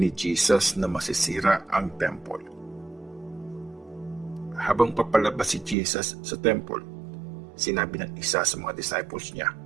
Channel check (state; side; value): drops out; left; at 5.8 s